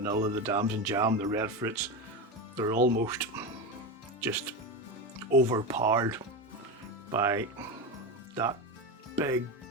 the dams and jam, the red fruits, they're almost just overpowered by that big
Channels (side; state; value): both; normal; correlation 0.19